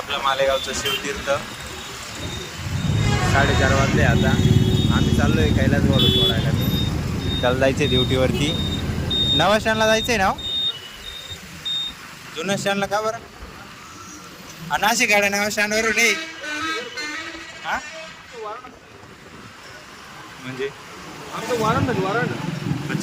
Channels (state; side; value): identical; both; correlation 1.00